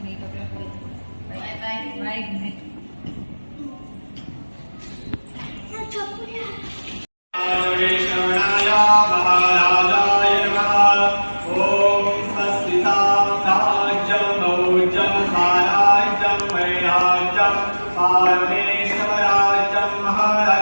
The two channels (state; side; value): inverted; both; correlation -1.00